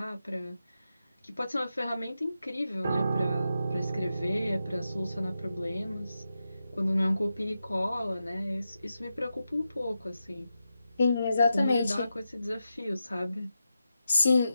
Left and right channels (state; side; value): inverted; both; correlation -0.89